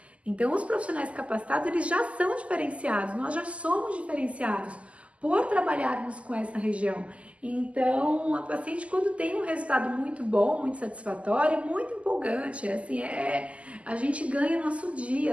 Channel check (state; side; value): late; left; 0.062 ms